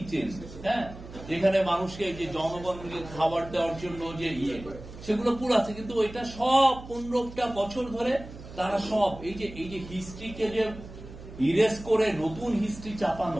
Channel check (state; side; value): noise; right; hum, 15 dB below the sound